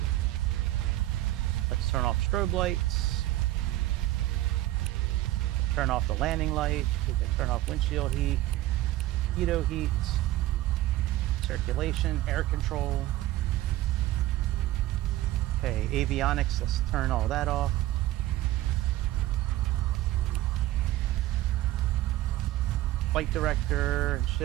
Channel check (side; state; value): left; quieter; 15.6 dB